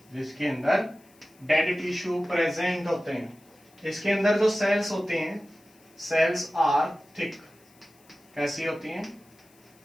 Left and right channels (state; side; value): noise; left; hiss, 30 dB below the sound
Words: जिसके अंदर डेड टिश्यू प्रेजेंट होते हैं। इसके अंदर जो सेल्स होते हैं, सेल्स आर थिक, कैसी होती हैं?